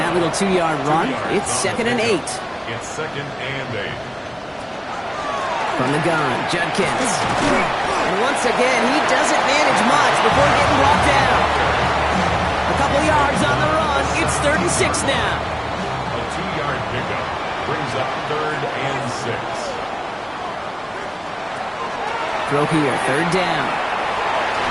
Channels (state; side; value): identical; both; correlation 1.00